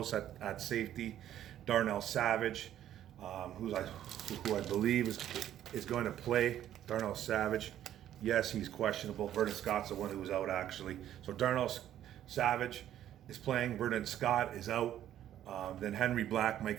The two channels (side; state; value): left; quieter; 11.5 dB